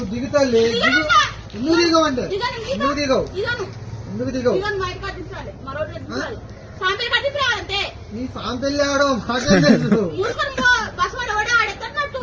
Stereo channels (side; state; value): both; identical; correlation 1.00